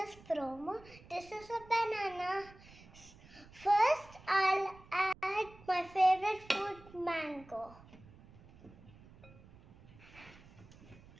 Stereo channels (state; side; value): noise; right; rumble, 22 dB below the sound